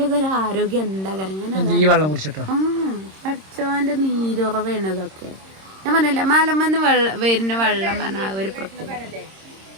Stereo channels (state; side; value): late; left; 26 ms